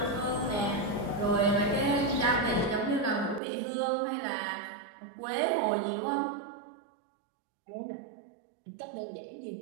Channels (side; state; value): left; drops out; at 3.4 s